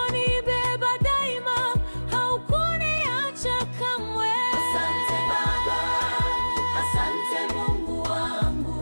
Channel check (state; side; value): inverted; both; correlation -1.00